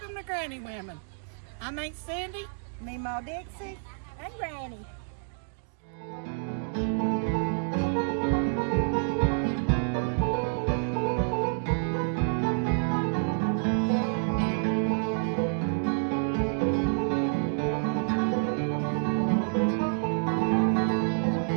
to Granny Women. I'm Aunt Cindy, Memaw Dixie, and Granny.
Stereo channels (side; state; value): left; silent; digital silence